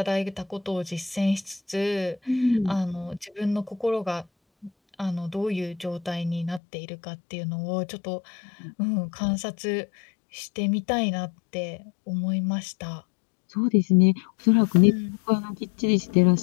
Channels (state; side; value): drops out; right; at 6.6 s